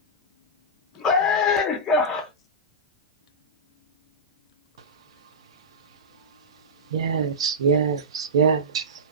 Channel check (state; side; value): normal; both; correlation -0.13